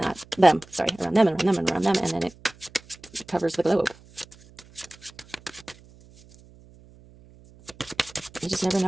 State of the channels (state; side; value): noise; right; hum, 25 dB below the sound